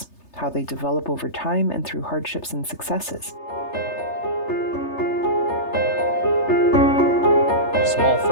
how they develop over time and through hardships and successes. Small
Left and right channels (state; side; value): late; right; 3.3 ms